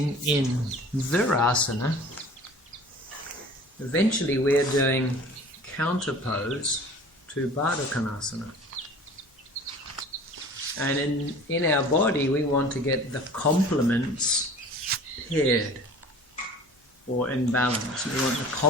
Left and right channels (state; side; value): normal; both; correlation 0.44